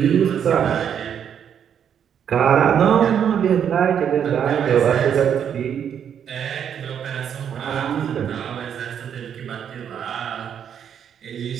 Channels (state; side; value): quieter; left; 8.5 dB